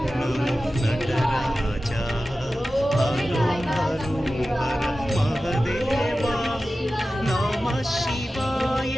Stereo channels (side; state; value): both; normal; correlation 0.94